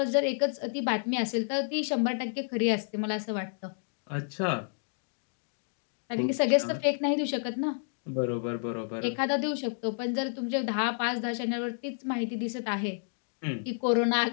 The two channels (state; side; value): silent; right; digital silence